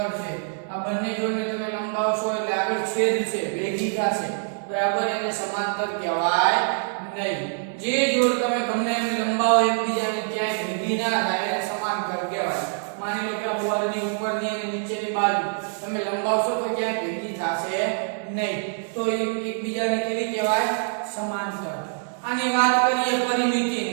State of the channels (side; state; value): left; silent; 57 dB below the other